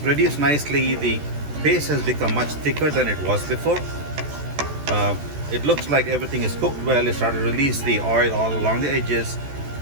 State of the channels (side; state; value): left; late; 14 ms